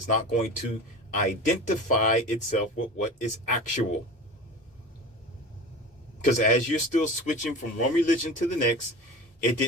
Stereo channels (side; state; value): both; normal; correlation 0.33